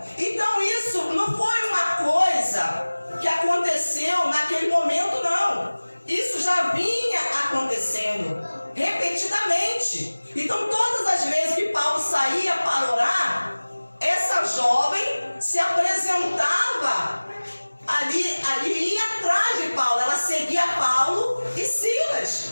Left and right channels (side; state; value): both; inverted; correlation -1.00